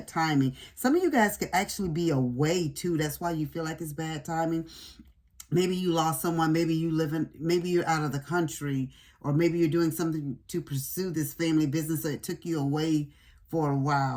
timing. Some of you guys could actually be away too. That's why you feel like it's bad timing. Maybe you lost someone, maybe maybe you're out of the country, or maybe you're doing something to pursue this family business, so it took you away for a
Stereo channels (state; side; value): identical; both; correlation 1.00